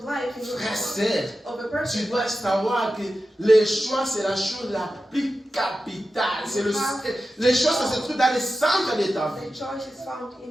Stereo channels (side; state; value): both; normal; correlation 0.92